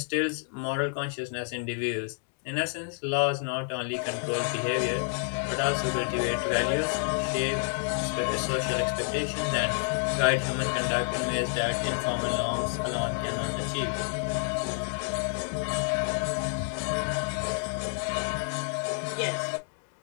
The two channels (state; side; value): silent; right; 57 dB below the other